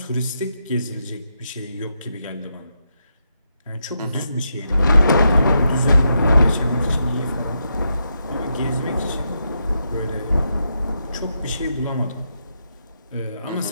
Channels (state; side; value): inverted; both; correlation -0.83